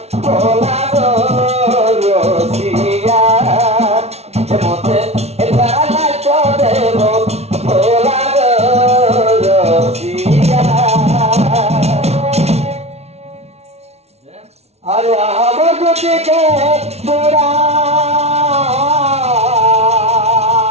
ভোলা রসিয়া মতে তারা দেব ভোলা রসিয়া আরে আমার গতিকে তোরা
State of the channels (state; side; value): late; left; 0.31 ms